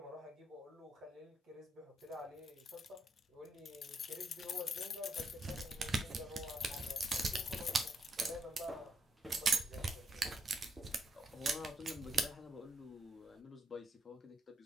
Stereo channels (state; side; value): normal; both; correlation 0.78